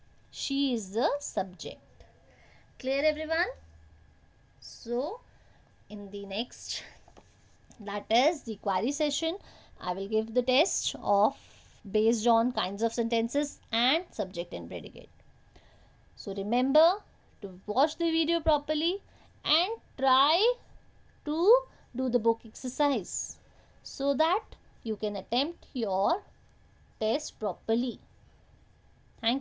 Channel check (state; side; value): identical; both; correlation 1.00